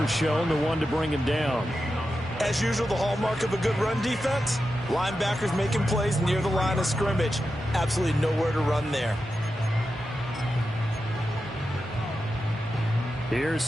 the one to bring him down. As usual, the hallmark of a good run defense, linebackers making plays near the line of scrimmage. Absolutely nowhere to run there. Here's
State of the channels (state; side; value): normal; both; correlation 0.90